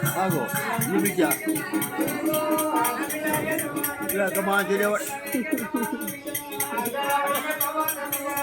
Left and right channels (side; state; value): both; identical; correlation 1.00